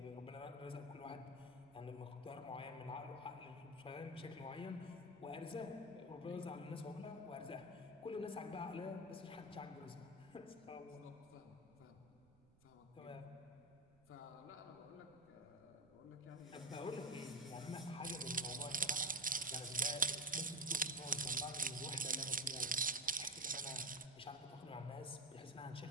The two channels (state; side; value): noise; right; rumble, 28 dB below the sound